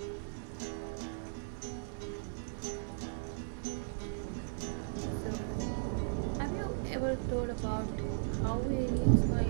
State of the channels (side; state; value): left; silent; 53 dB below the other